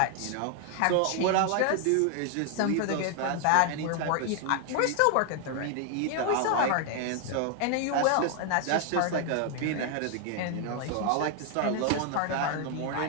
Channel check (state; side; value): different; both; correlation 0.00